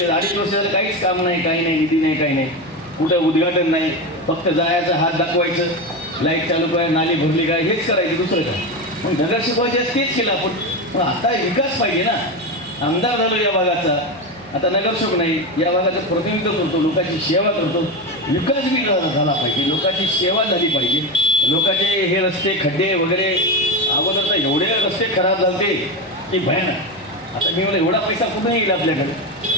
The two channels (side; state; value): left; noise; hum, 29 dB below the sound